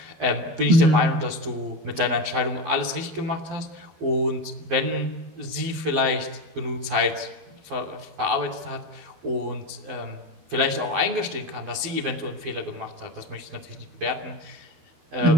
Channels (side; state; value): left; late; 12 ms